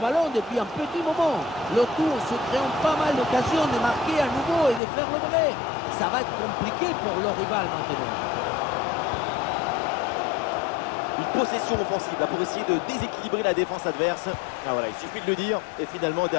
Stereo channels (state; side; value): drops out; right; at 4.8 s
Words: depuis un petit moment. Le tour se créant pas mal d'occasions de marquer à nouveau et de faire le vrai. Ça va être compliqué pour le rival maintenant. Une possession offensive là, pour essayer de déséquilibrer la défense adverse. Ah voilà, il suffit de le dire. Et finalement,